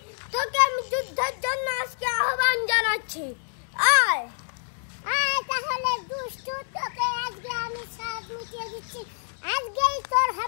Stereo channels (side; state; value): right; silent; digital silence